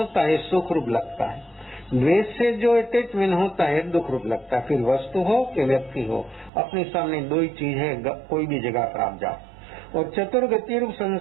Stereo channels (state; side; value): drops out; left; at 6.5 s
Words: है सुख रूप लगता है, द्वेष से जो अटैचमेंट होता है दुख रूप लगता है। फिर वस्तु हो कि व्यक्ति हो, अपने सामने 2 ही चीज है, कोई भी जगह पर आप जाओ। और चतुर्गति रूप